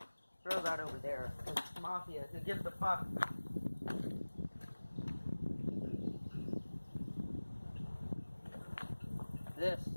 throw that over there. Because Mafia, who gives a fuck? This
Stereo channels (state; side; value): inverted; both; correlation -1.00